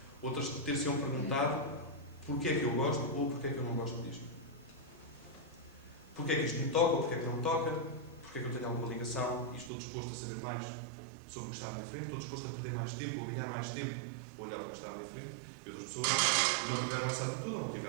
outras ter-se-ão perguntado porquê é que eu gosto ou porquê é que eu não gosto disto. Porquê é que isto me toca ou porquê é que não me toca, porquê é que eu tenho alguma ligação e estou disposto a saber mais sobre o que está à minha frente, estou disposto a perder mais tempo ou a ganhar mais tempo a olhar para o que está à minha frente. E outras pessoas não tiveram essa atitude ou não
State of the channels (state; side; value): drops out; left; at 9.7 s